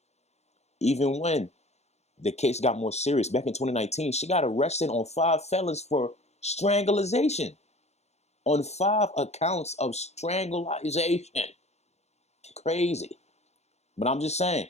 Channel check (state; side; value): late; right; 0.32 ms